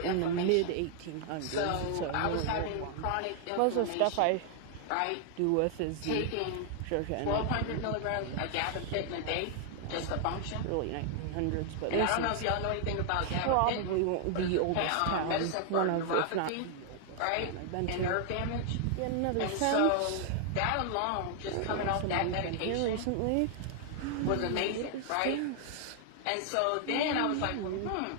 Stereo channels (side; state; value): both; different; correlation 0.00